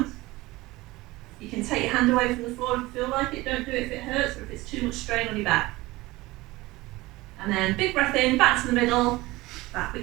You can take your hand away from the floor if you feel like it. Don't do it if it hurts or if it's too much strain on your back. And then big breath in, back to the middle, back we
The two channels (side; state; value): left; quieter; 20.0 dB